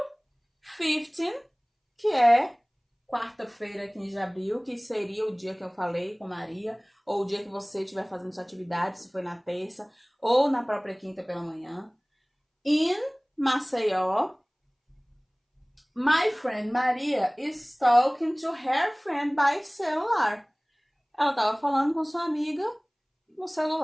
15, que é quarta-feira, 15 de abril, que seria o dia que eu falei com Maria, ou o dia que você estiver fazendo sua atividade, se foi na terça, ou na própria quinta pela manhã. In Maceió, my friend Maria is talking to her friend by celular. Ela estava falando com sua amiga no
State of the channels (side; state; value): both; identical; correlation 1.00